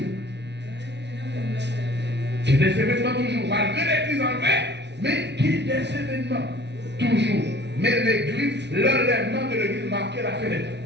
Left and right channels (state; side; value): late; left; 0.50 ms